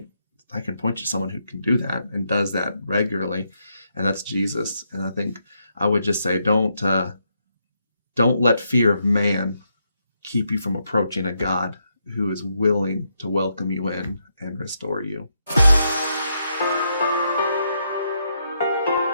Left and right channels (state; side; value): inverted; both; correlation -0.79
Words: to someone who can do that and does that regularly. And that's Jesus. And I think I would just say, don't let fear of man keep you from approaching a God who is willing to welcome you in and restore you.